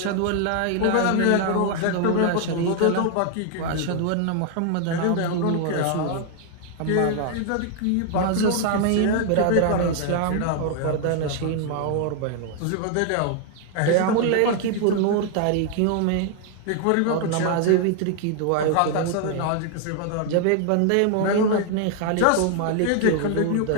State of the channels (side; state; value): both; different; correlation 0.00